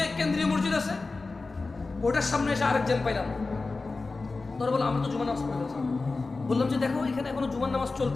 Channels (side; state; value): right; quieter; 3.7 dB